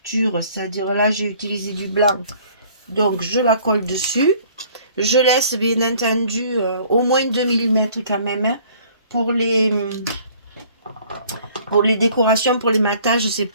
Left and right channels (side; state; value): both; inverted; correlation -0.55